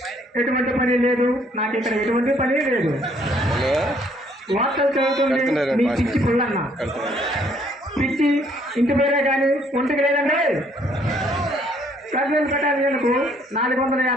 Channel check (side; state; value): both; normal; correlation 0.64